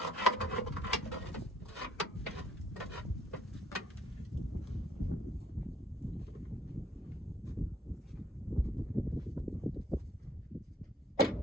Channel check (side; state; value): both; normal; correlation 0.63